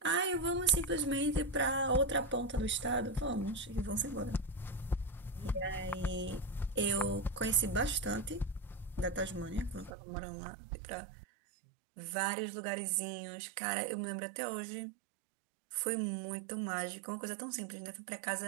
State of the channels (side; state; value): left; drops out; at 9.9 s